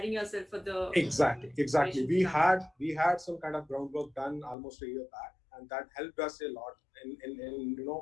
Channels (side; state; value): right; drops out; at 4.5 s